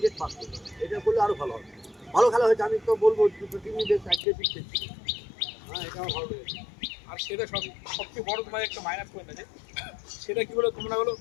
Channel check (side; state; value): right; drops out; at 4.2 s